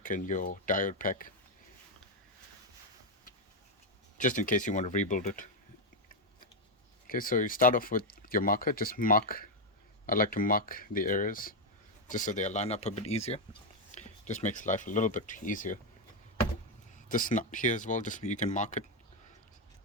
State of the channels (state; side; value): normal; both; correlation 0.03